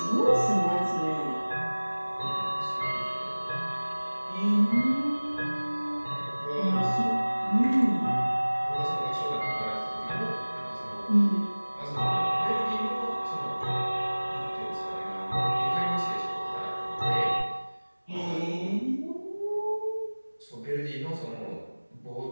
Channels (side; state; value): both; inverted; correlation -1.00